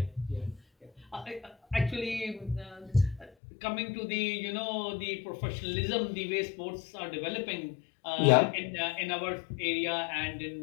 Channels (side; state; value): right; drops out; at 3.3 s